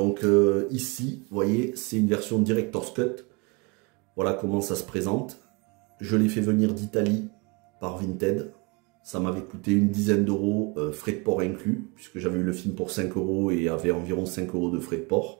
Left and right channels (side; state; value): left; quieter; 28.6 dB